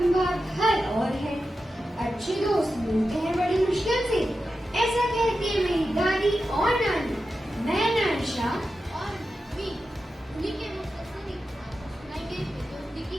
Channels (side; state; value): both; normal; correlation 0.91